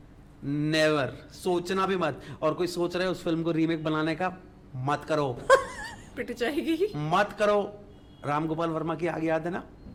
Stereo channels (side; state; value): both; identical; correlation 1.00